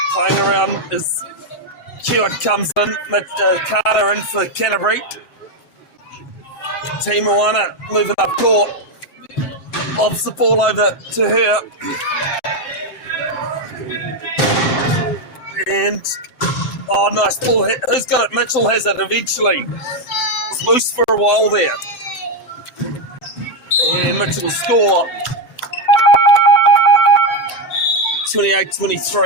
playing around as Hewitt comes in. Carter in for Canterbury. Moana moving up court. Lobs the ball over to her. And, nice ball. Who's got it? Mitchell has it eventually. It's loose for a while there. And Mitchell will score.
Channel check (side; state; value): right; late; 7.8 ms